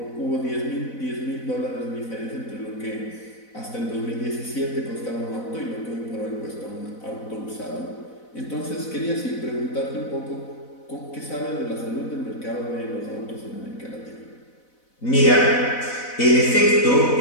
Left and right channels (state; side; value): late; right; 4.0 ms